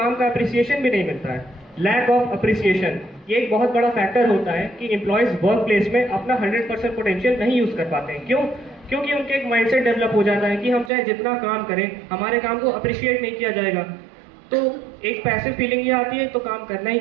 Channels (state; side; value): drops out; left; at 10.9 s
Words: का अप्रिसिएशन भी नहीं मिलता है। लैक ऑफ अप्रिसिएशन ये एक बहुत बड़ा फैक्टर होता है कि एम्प्लॉयज वर्क प्लेस में अपना 100% पोटेंशियल नहीं यूज कर पाते हैं। क्यों? क्योंकि उनके एक माइंडसेट डेवलप हो जाता है कि हम चाहे जितना काम करें हमारे काम को अप्रिशिएट नहीं किया जाएगा। तो एक पैसिव फीलिंग ये आती है तो काम करना ही